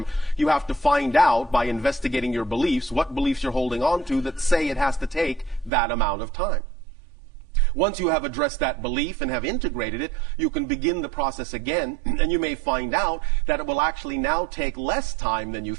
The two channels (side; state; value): left; drops out; at 5.7 s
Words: you have to find out by investigating your beliefs what beliefs you're holding on to that say it has to take that amount of time. Once you have addressed that belief and have integrated it, you can begin the process again, and you may find out that it will actually now take less time than you